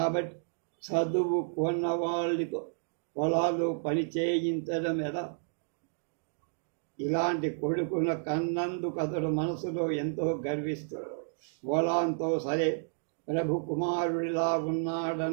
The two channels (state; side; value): silent; left; digital silence